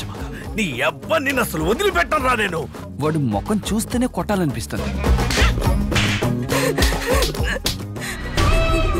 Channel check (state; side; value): identical; both; correlation 1.00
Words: నీ అబ్బా నిన్ను అసలు వదిలిపెట్టరా నేను. వాడు ముఖం చూస్తేనే కొట్టాలనిపిస్తుంది.